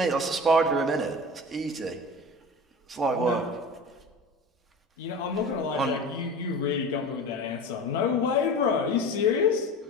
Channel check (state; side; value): normal; both; correlation 0.33